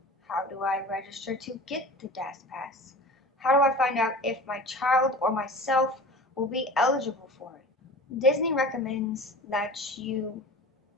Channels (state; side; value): normal; both; correlation 0.37